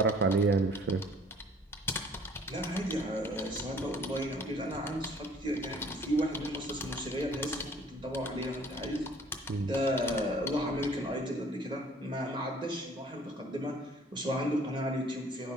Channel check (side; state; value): both; normal; correlation 0.55